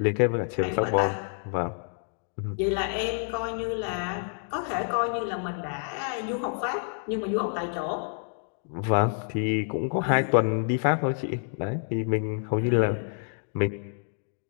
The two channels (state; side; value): silent; right; 59 dB below the other